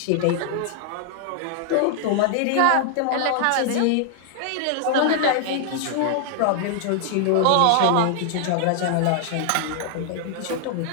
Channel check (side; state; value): both; different; correlation 0.00